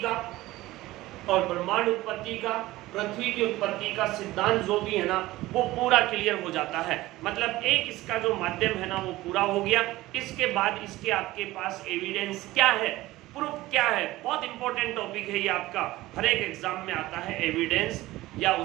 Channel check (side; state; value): left; quieter; 17.7 dB